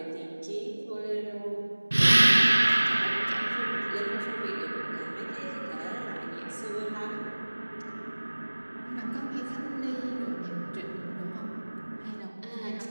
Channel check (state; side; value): inverted; both; correlation -1.00